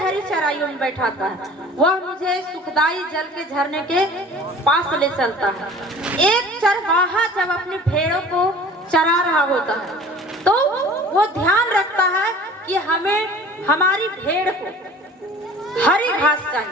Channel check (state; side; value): normal; both; correlation 0.45